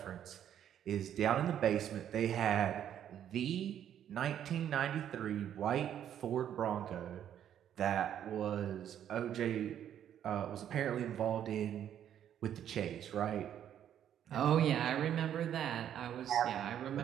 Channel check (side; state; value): left; quieter; 10.1 dB